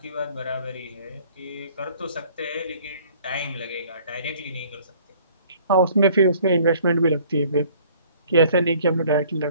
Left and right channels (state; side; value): inverted; both; correlation -0.56